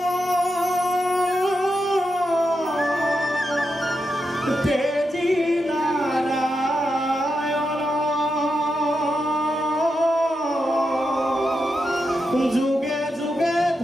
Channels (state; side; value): normal; both; correlation 0.86